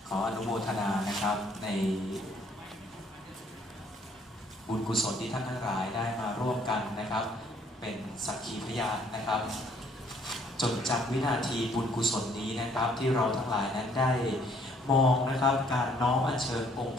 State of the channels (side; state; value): both; normal; correlation 0.63